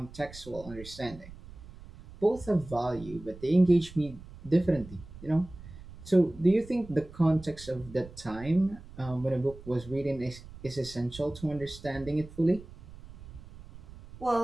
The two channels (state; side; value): noise; right; rumble, 17 dB below the sound